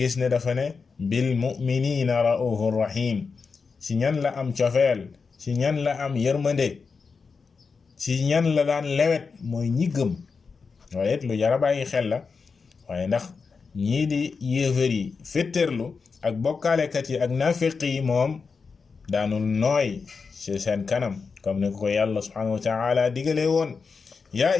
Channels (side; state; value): right; quieter; 5.0 dB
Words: ne dafa ne bil mu'minina ra'ufur rahim. si ñan la am cofeel si ñan la am yërmande si ñan la daan lewet mooy ñi gëm. waaye it lu jara bàyyi xel la waaye ndax ñii di yéefar yi fétterlu ak bokkaalekat yi ak nafiq yi moom daanul nooy ci seen kanam comme ni ko yàlla subhanahu wa ta'ala digalee woon ya